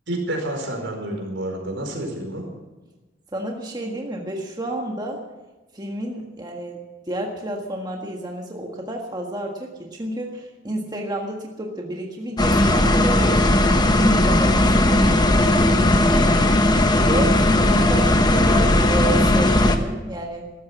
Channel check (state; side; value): normal; both; correlation 0.65